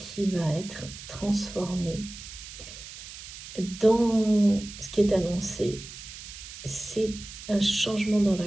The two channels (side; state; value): right; noise; hiss, 13 dB below the sound